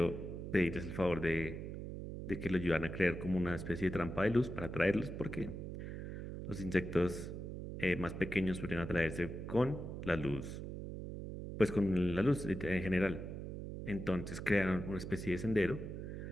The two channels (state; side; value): noise; right; hum, 7 dB below the sound